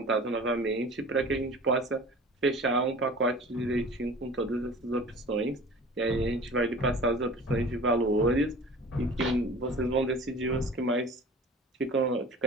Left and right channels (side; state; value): both; normal; correlation 0.41